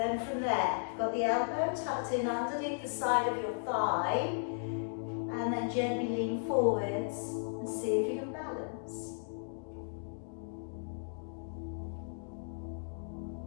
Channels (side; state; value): right; silent; digital silence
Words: from there, you've got the elbow tucked in underneath the side of your thigh, and then gently lean forwards and see if you can balance.